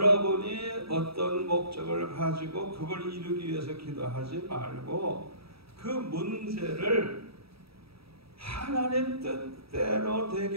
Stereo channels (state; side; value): late; left; 0.77 ms